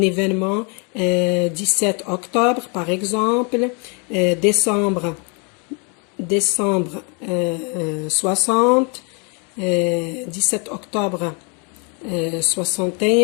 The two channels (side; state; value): right; quieter; 34.5 dB